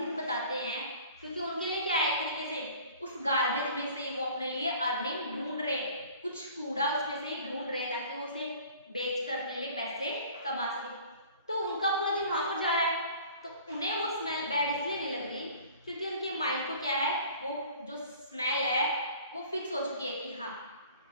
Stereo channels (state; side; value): inverted; both; correlation -0.48